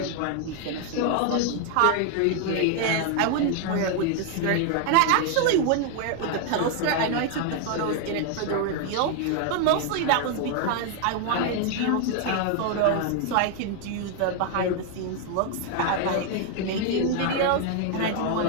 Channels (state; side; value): different; both; correlation 0.00